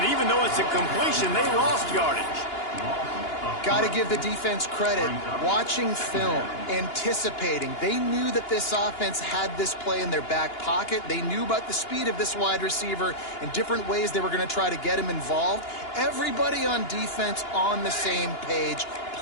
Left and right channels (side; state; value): right; late; 2.9 ms